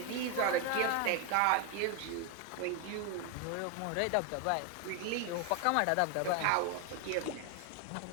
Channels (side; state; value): both; different; correlation 0.01